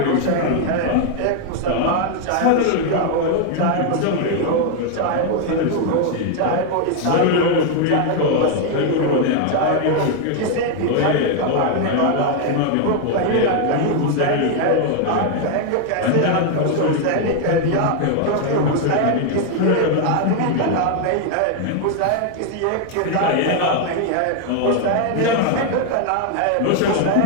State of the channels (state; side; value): different; both; correlation 0.00